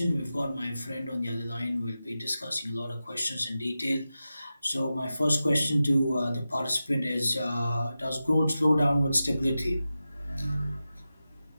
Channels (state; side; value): inverted; both; correlation -0.93